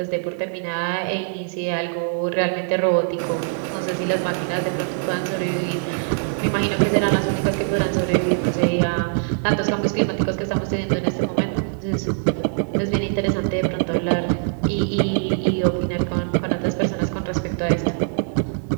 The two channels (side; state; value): left; silent; digital silence